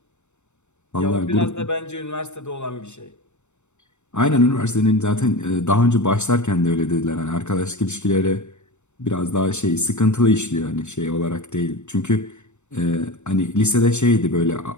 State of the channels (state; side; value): late; right; 0.84 ms